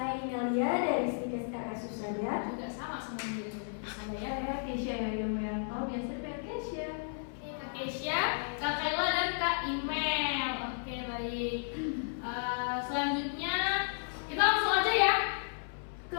Nelia dari Psikis RS Husada. Juga sama semuanya dari Husada ya. Saya Keisha Yulianto, biasa dipanggil Keisha. Kak Keisha, Kak Khaila dan Kak Imel. Oke, baik. Selanjutnya kita langsung aja ya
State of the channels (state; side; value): silent; right; 55 dB below the other